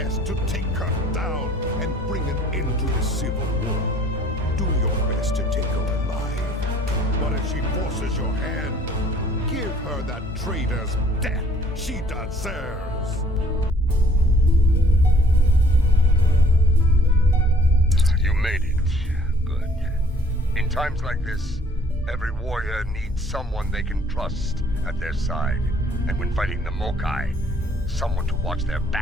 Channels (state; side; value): normal; both; correlation 0.57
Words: to take her down and bring an end to the civil war. Do your best to take her alive. But if she forces your hand, give her that traitor's death she deserves. You made it. Good. In times like this, every warrior needs someone they can trust at their side. And when fighting the Mokai, someone to watch their